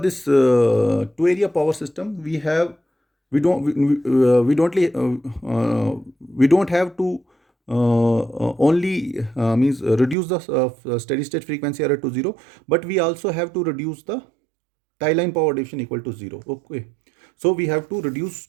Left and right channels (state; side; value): drops out; left; at 10.2 s